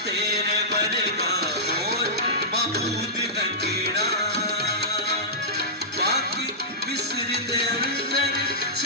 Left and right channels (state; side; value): normal; both; correlation -0.14